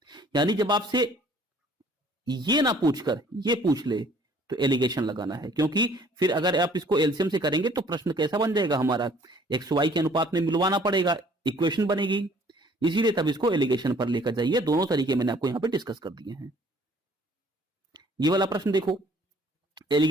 यानी जब आपसे ये ना पूछकर ये पूछ ले तो एलिगेशन लगाना है, क्योंकि फिर अगर आप इसको एलसीएम से करेंगे तो प्रश्न कैसा बन जाएगा हमारा, एक्स वाई के अनुपात में मिलवाना पड़ेगा, इक्वेशन बनेगी। इसीलिए तब इसको एलिगेशन पर लेकर जाइए। दोनों तरीके मैंने आपको यहां पे डिस्कस कर दिए हैं। ये वाला प्रश्न देखो,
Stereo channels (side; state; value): both; normal; correlation 0.57